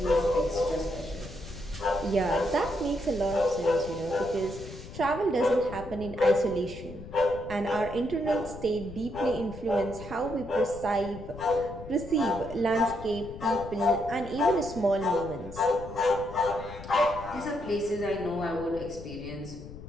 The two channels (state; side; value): noise; left; rumble, 13 dB below the sound